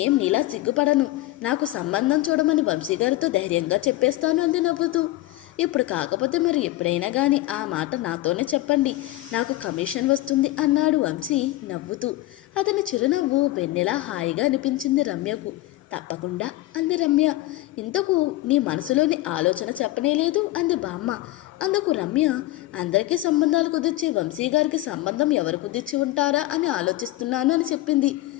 నీలా సిగ్గుపడను. నాకు సంబంధం చూడమని వంశీగారితో ధైర్యంగా చెప్పేస్తాను అంది నవ్వుతూ. ఇప్పుడు కాకపోతే మరి ఎప్పుడైనా కానీ ఆ మాట నాతోనే చెప్పండి, నాకు కమిషన్ వస్తుంది అన్నాడు వంశీ నవ్వుతూ. అతని చిరునవ్వు వెన్నెలా హాయిగా అనిపించింది రమ్యకు. తప్పకుండా అంది రమ్య. ఇంతకు నీ మనసులోని ఆలోచన చెప్పనేలేదు అంది బామ్మ. అందుకు రమ్య అందరికీ సంబంధాలు కుదిర్చి వంశీ గారికి సంబంధం ఎవరు కుదిర్చి ఉంటారా అని ఆలోచిస్తున్నాను అని చెప్పింది.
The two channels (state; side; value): quieter; right; 16.9 dB